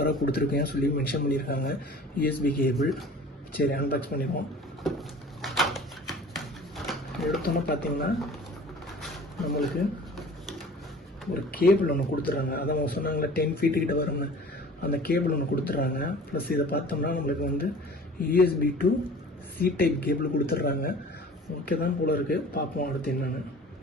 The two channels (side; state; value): both; normal; correlation 0.44